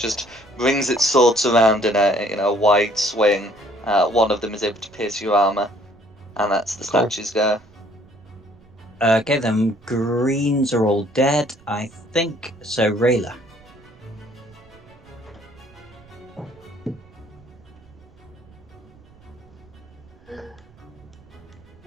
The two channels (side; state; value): right; noise; rumble, 26 dB below the sound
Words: brings its swords around in a wide swing. One of them is able to pierce your armor, and that's the statue's go. Okay, then greens are all dead, I think. So Rayla.